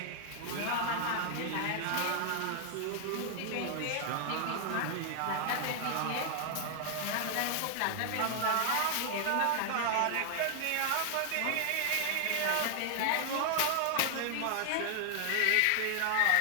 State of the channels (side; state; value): both; different; correlation 0.00